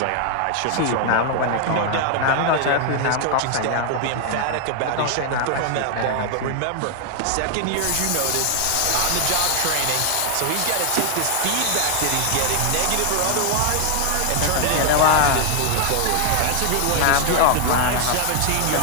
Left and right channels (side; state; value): both; different; correlation 0.00